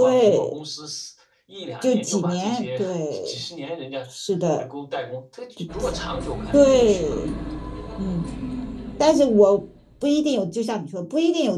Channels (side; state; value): both; identical; correlation 1.00